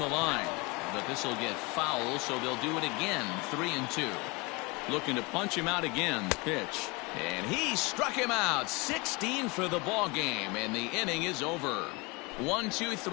line, but this will get foul, so they'll do it again. 3-2. Looking to punch him out again. Pitch, and he struck him out. 16 for the ball game, and the inning is over.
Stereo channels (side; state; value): right; quieter; 26.9 dB